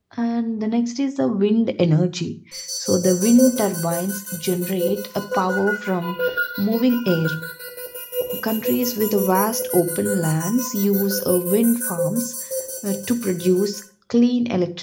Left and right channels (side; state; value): both; identical; correlation 1.00